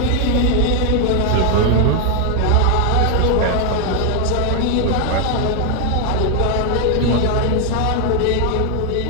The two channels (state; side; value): different; both; correlation 0.01